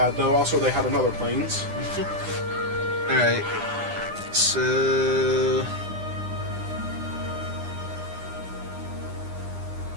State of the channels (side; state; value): left; late; 9.9 ms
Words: though. Also, they had another planes. alright, so...